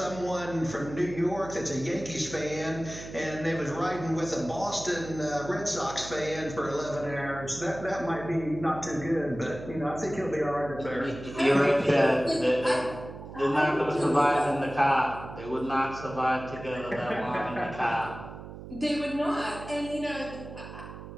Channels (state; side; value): noise; right; hum, 12 dB below the sound